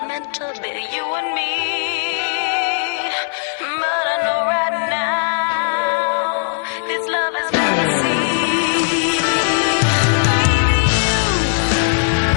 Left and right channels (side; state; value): right; silent; 57 dB below the other